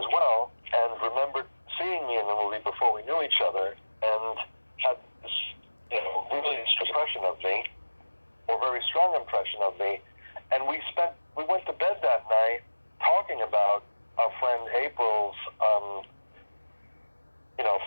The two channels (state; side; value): inverted; both; correlation -1.00